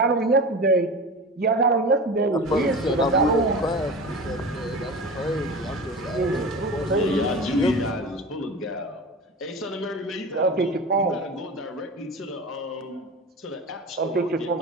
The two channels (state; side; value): normal; both; correlation 0.32